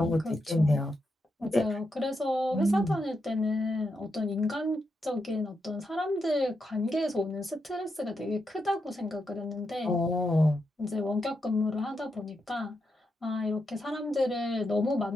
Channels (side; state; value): both; normal; correlation 0.84